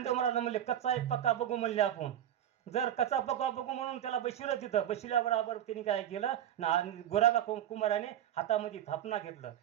महाराज म्हणले कच्चा एक पक्का बघू म्हणले आपण जर कच्चा पक्का बघू म्हणून त्याला बसविलं तिथं बसविल्याबरोबर त्यांनी काय केलं ना गोरागा कुंभाराने हातामध्ये थापना घेतलं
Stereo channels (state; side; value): quieter; left; 10.9 dB